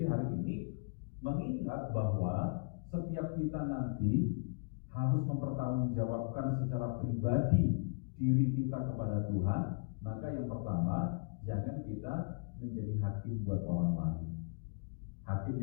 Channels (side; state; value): right; quieter; 35.0 dB